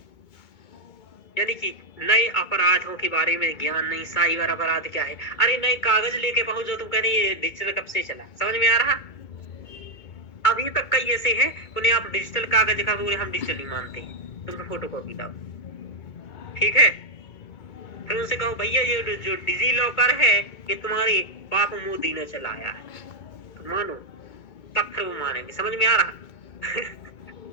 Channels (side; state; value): right; late; 2.2 ms